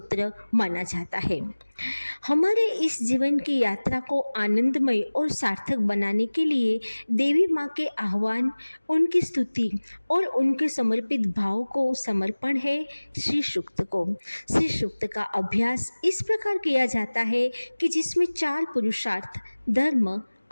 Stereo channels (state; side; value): inverted; both; correlation -1.00